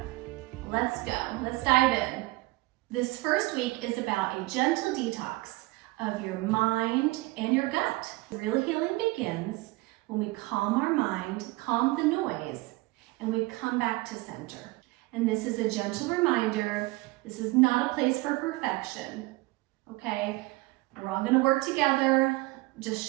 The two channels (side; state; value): left; quieter; 21.5 dB